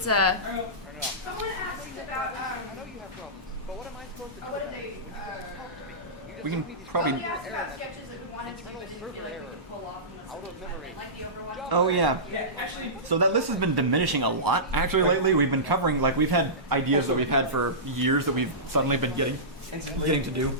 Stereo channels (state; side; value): normal; both; correlation -0.20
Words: Someone asked about I know you have problems, but what am I supposed to do? what did they We can probably. we asked about sketches that we wanted to but didn't feel like we could pull off in the Out of memory. like the Overwatch. Oh yeah. So that list has been diminishing a lot. Actually, lately we've been covering we've had ideas that we've had for years that we've suddenly been getting to do.